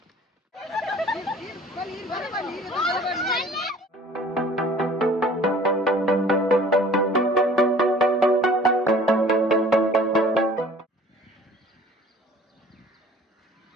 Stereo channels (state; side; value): normal; both; correlation 0.49